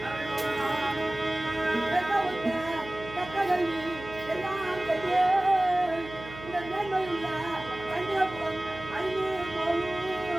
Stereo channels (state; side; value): noise; right; hum, 14 dB below the sound